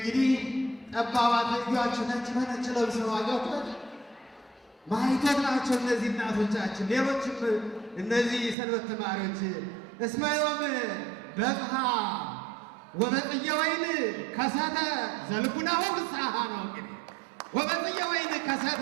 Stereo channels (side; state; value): left; drops out; at 8.6 s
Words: ጠባባት ልጇችሁ ነጭ በነጭ ለብሰው አገቷል ማይቶት ናቸው እነዚህ እናቶቻችን። ሌሎችም እነዚህ ሰንበት ተማሪዎች እስመ ዮም በጽሐ ወበጽጌ ወይን ከሰተ ዘልቡናሁ ፍስሐ ነው። እንግዲህ ወበጽጌ ወይን